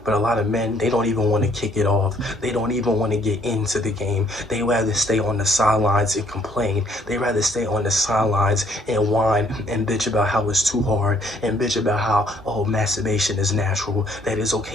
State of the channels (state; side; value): normal; both; correlation 0.65